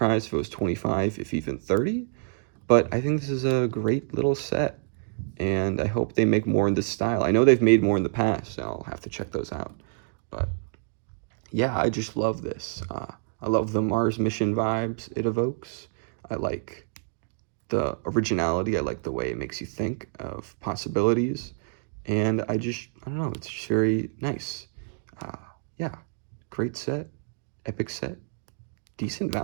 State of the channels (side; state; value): left; silent; digital silence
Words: if it was 25, if even 30. But I think this is a great little set, and I hope they make more in this style. I know they've made more in the past, so I'll have to check those out. But yeah, I just love this. I love the Mars mission vibes it evokes. I like the originality. I like the way it makes you think of possibilities. And I don't know, it's just very nice. Yeah, great set, epic set, decent